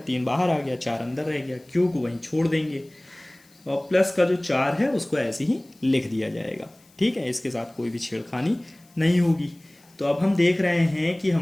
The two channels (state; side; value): noise; left; hiss, 30 dB below the sound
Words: 3 बाहर आ गया, 4 अंदर रह गया, q को वहीं छोड़ देंगे और प्लस का जो 4 है उसको ऐसे ही लिख दिया जाएगा। ठीक है, इसके साथ कोई भी छेड़खानी नहीं होगी। तो अब हम देख रहे हैं कि